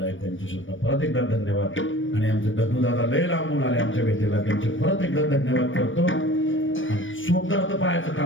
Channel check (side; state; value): right; late; 0.56 ms